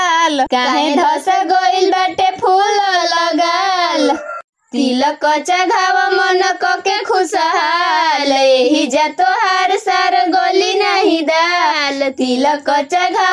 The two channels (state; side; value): identical; both; correlation 1.00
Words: काहे धस गोइल बाटे फूल लगाल। तिलक चढ़ाव मन के खुशहाल, यही जा तोहार सार गोली नहीं दाल। तिलक